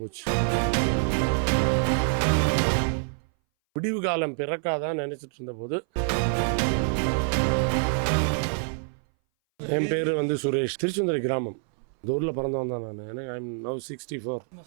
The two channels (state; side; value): silent; left; 59 dB below the other